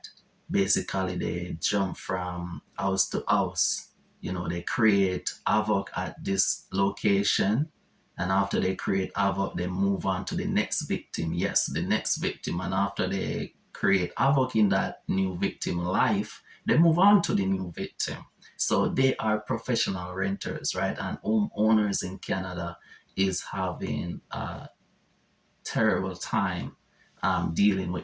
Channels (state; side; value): identical; both; correlation 1.00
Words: basically they jump from house to house. You know, they create havoc at this location, and after they create havoc, they move on to the next victim. Yes, the next victim, and after they create havoc in that new victim life, they move on to the new victim. So they are professional renters, right? And homeowners in Canada is having a terrible time dealing